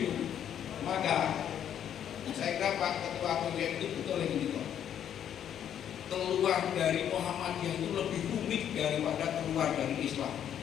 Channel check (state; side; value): quieter; right; 9.6 dB